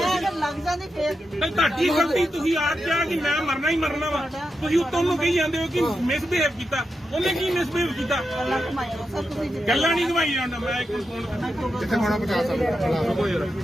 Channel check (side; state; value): both; normal; correlation 0.88